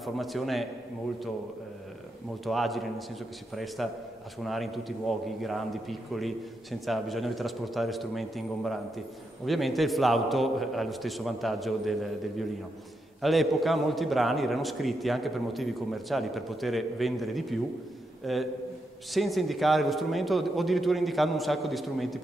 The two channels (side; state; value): both; normal; correlation 0.83